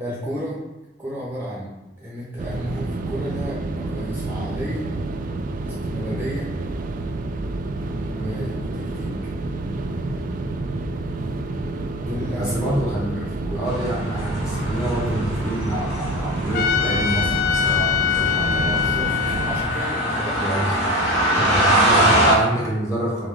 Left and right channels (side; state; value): both; normal; correlation 0.33